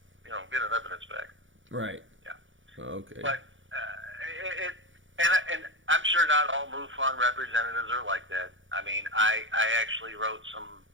you know, get an evidence back. Right. Yeah. Okay. But and I'm sure not all MUFON representatives are like that. I mean, I actually wrote some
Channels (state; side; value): late; left; 0.56 ms